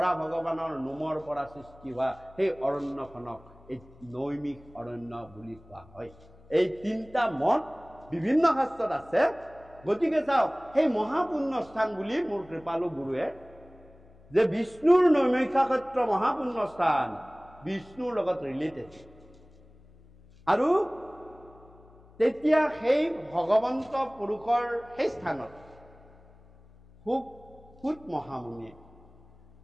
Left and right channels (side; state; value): left; noise; hum, 25 dB below the sound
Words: ভগৱানৰ নোমৰ পৰা সৃষ্টি হোৱা সেই অৰণ্যখনক এই নৈমিষ অৰণ্য বুলি কোৱা হয়। এই 3টা মত বিভিন্ন শাস্ত্ৰত আছে। গতিকে চাওক, সেই মহাপুণ্য স্থান বুলি মোৰ কৃপালু গুৰুৱে যে বিষ্ণুৰ নৈমিষাক্ষেত্ৰ মহাপুণ্য স্থান, বিষ্ণুৰ লগত ৰিলেটেড। আৰু তেতিয়া সেই ভগৱন্ত পুৰুষৰ সেই স্থানত সুত মহামুনিয়ে